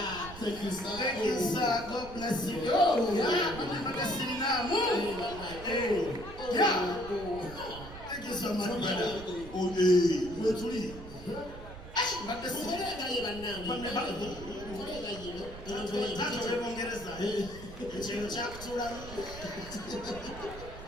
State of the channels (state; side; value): noise; right; rumble, 14 dB below the sound